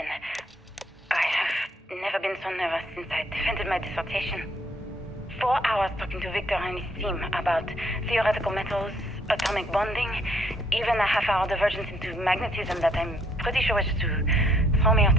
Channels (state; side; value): normal; both; correlation 0.67